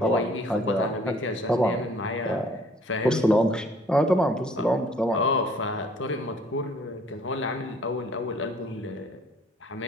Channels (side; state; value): both; normal; correlation 0.58